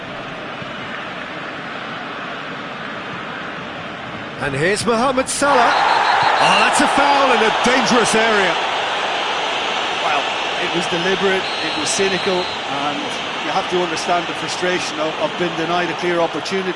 And here's Mohamed Salah. Oh, that's a foul in a dangerous area. Well, it was deliberate, it was cynical, and you have to understand the frustration of being denied a clear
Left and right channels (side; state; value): both; identical; correlation 1.00